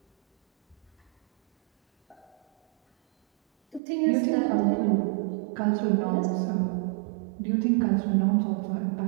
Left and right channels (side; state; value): left; drops out; at 3.8 s